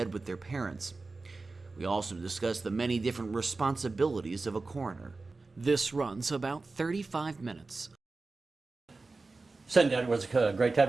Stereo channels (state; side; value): quieter; left; 3.7 dB